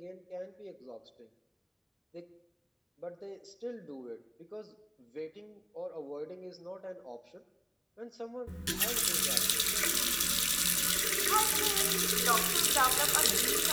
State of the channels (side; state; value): both; identical; correlation 1.00